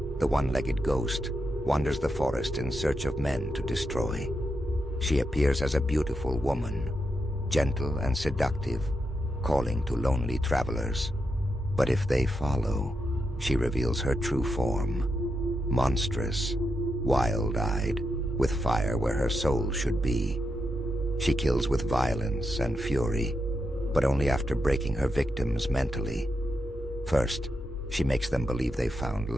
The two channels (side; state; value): both; normal; correlation 0.85